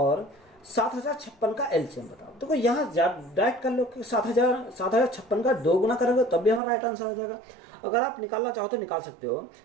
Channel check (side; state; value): left; drops out; at 6.6 s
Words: 7056 का एलसीएम बताओ। देखो यहाँ डायरेक्ट कर लो कि 7056 का 2 गुना करोगे तब भी हमारा राइट आंसर हो जाएगा। अगर आप निकालना चाहो तो निकाल सकते हो